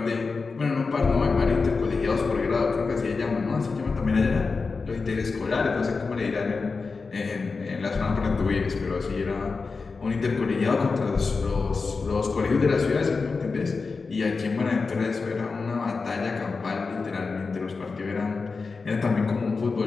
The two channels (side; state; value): right; quieter; 4.4 dB